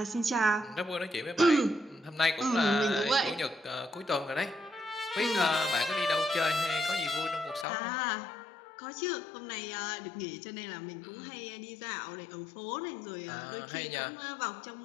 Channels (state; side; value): drops out; right; at 7.7 s